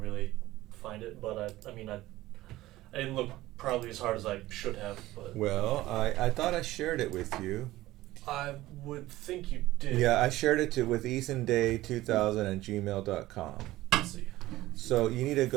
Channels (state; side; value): quieter; left; 16.8 dB